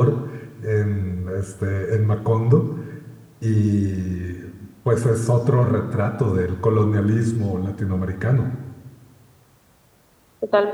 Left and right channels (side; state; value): both; identical; correlation 1.00